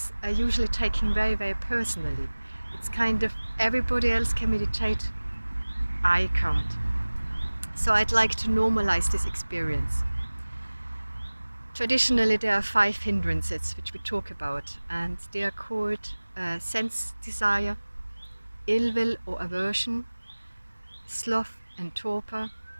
are usually taken very, very personally. It's kind of everybody else can meditate, I can't. So I'd like to normalize this experience. Traditionally, there are 5 hindrances which we talk about, and they are called sense desire, ill will or aversion, sloth and torpor,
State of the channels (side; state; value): both; inverted; correlation -1.00